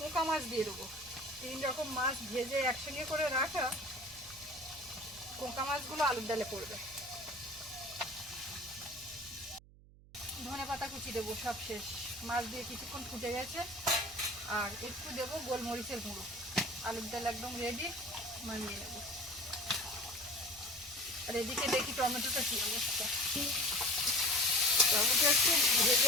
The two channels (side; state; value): right; noise; hum, 23 dB below the sound